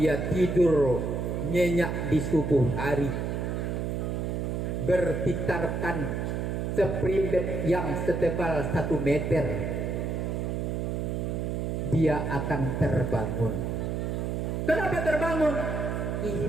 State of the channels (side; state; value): right; noise; hum, 1 dB below the sound